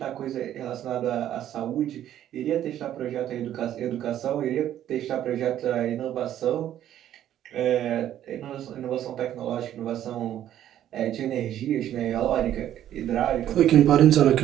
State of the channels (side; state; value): left; quieter; 11.5 dB